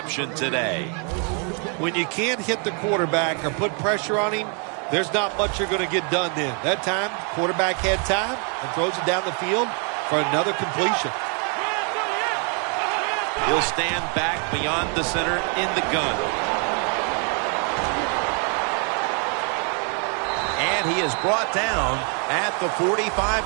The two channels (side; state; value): left; quieter; 39.2 dB